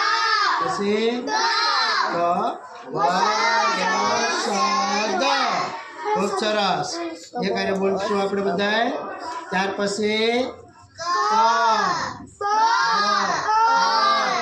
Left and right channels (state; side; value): identical; both; correlation 1.00